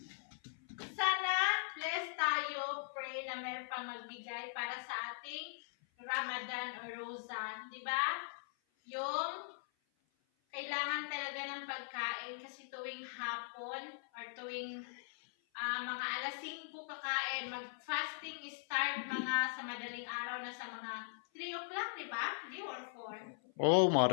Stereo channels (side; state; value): right; silent; 51 dB below the other